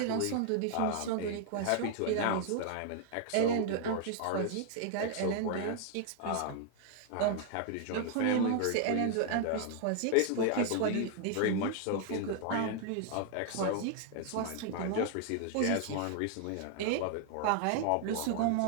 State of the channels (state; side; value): different; both; correlation 0.00